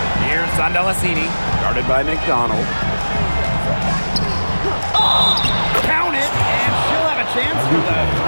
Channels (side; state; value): both; inverted; correlation -1.00